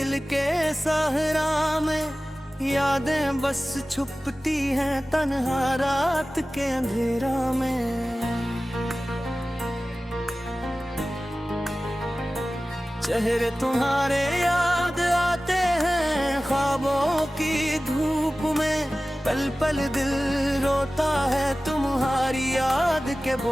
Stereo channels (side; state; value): both; normal; correlation 0.96